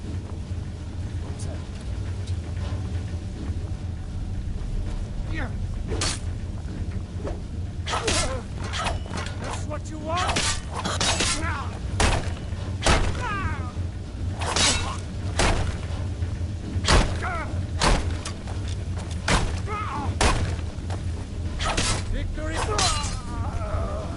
That's what you want? Victory!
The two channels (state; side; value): identical; both; correlation 1.00